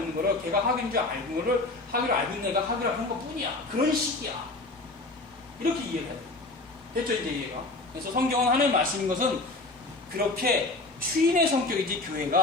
거를 걔가 하교인 줄 알고 있는 거를 하교를 알고 있는 애가 하교라고 하는 것 뿐이야. 그런 식이야. 이렇게 이해를 해야 돼. 됐죠 이제 이해가? 그래서 성경은 하나님의 말씀인 것은 그렇게 추인의 성격이지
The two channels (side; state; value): right; quieter; 3.0 dB